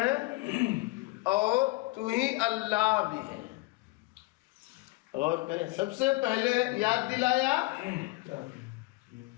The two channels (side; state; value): right; quieter; 22.5 dB